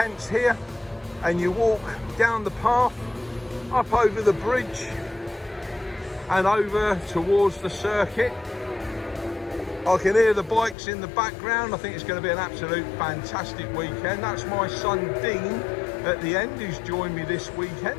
here, and you walk down the path, up over the bridge and over towards the circuit. I can hear the bikes in the background. I think it's going to be an absolute fantastic weekend. That's my son Dean at the end, who's joined me this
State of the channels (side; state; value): right; drops out; at 10.8 s